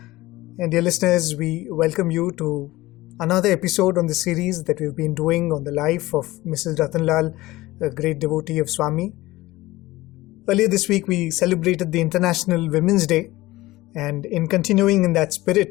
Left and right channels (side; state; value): right; quieter; 18.6 dB